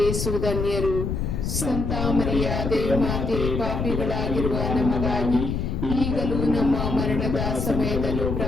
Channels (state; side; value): noise; left; rumble, 2 dB below the sound